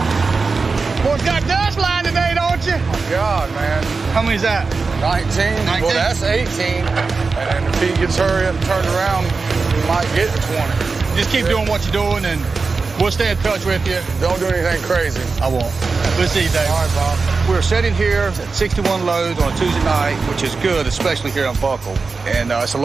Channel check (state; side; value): quieter; left; 4.3 dB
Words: Boy, got dust line today, don't you? Oh, God, man. How many's that? 19. Well, that's 18. And if he gets hurry up and turned around, he might get to 20. Just keep doing what you're doing, and we'll stay in touch with you. Don't do anything crazy. I won't. We'll see you, Dave. All right, Bob. We're sitting here at 61 loads on a Tuesday night, which is good, especially here on Buckle. And it's a